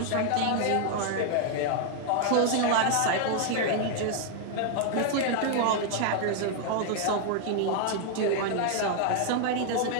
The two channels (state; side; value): different; both; correlation 0.00